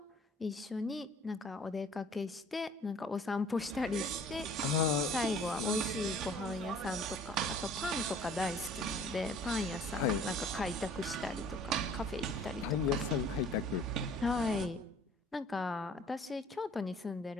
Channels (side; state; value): both; normal; correlation 0.52